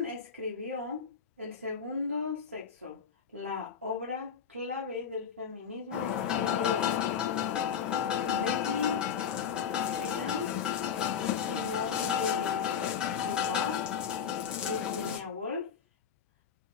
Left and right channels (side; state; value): right; quieter; 7.4 dB